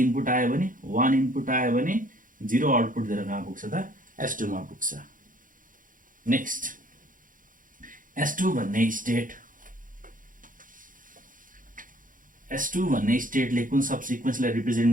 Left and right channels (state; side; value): late; left; 0.39 ms